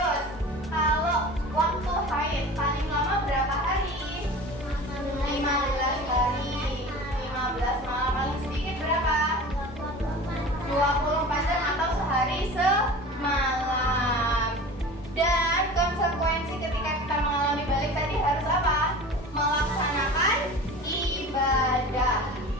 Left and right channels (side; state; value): both; normal; correlation 0.37